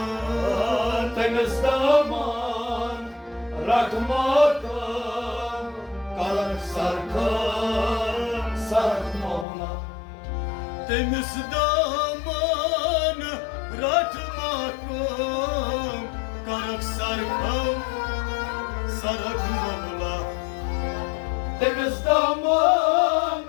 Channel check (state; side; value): drops out; right; at 9.5 s